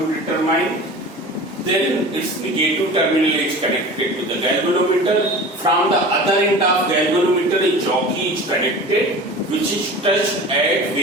determine. Then its negative terminal is connected to the galvanometer. From the other end of galvanometer, a jockey is connected, which is touched at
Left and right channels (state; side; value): normal; both; correlation 0.37